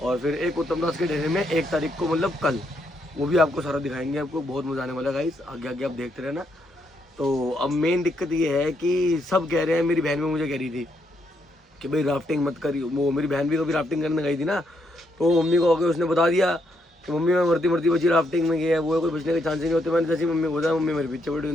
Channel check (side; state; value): both; normal; correlation 0.76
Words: और फिर एक उत्तम दास के डेरे में 1 तारीख को, मतलब कल, वो भी आपको सारा दिखाएंगे। आपको बहुत मज़ा आने वाला है गाइस, आगे आगे आप देखते रहना। तो अब मेन दिक्कत ये है कि सब कह रहे हैं, मेरी बहन भी मुझे कह रही थी कि भाई राफ्टिंग मत करियो। वो मेरी बहन भी कभी राफ्टिंग करने गई थी ना, तो मम्मी को आके उसने बता दिया कि मम्मी मैं मरती मरती बची राफ्टिंग में गया है, वो कोई बचने के चांस ही नहीं होते। मैंने जैसी मम्मी को बताया, मम्मी मेरे पीछे पड़ी,